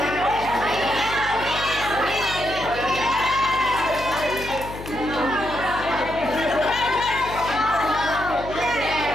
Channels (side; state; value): left; noise; hum, 12 dB below the sound